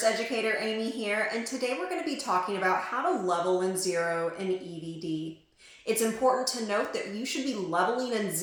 educator Amy here, and today we're going to be talking about how to level and zero an EVD. It's important to note that you should be leveling and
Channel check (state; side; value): identical; both; correlation 1.00